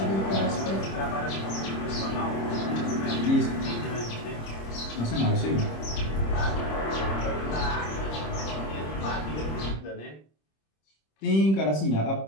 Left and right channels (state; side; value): late; right; 26 ms